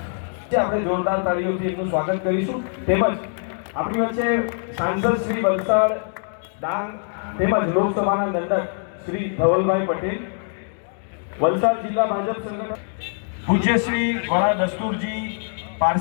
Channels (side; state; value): right; silent; 63 dB below the other